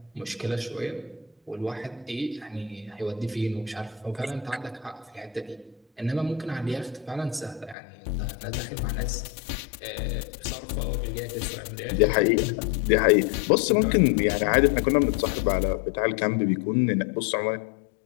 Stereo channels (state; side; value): drops out; right; at 7.8 s